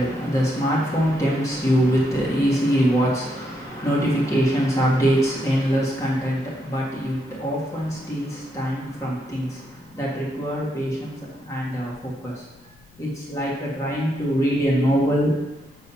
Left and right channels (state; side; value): noise; left; rumble, 29 dB below the sound